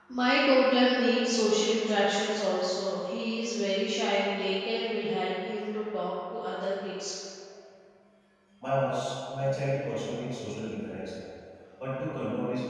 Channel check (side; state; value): both; identical; correlation 1.00